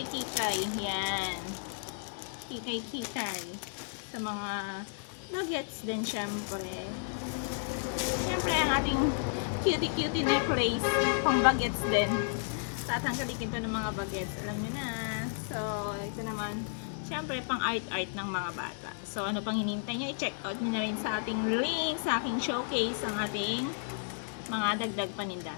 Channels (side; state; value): right; silent; digital silence